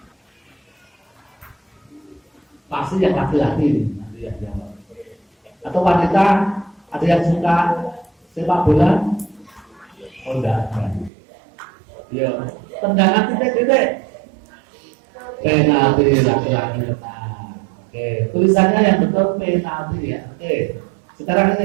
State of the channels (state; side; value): drops out; left; at 11.1 s